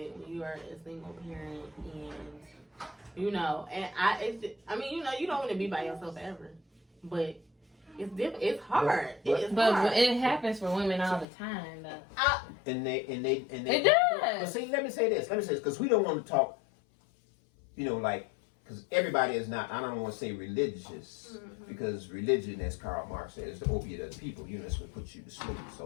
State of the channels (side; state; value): right; drops out; at 11.2 s